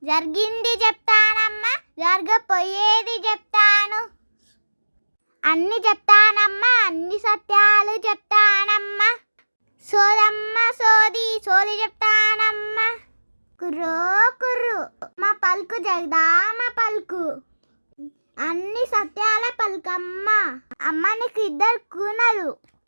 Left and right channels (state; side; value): inverted; both; correlation -1.00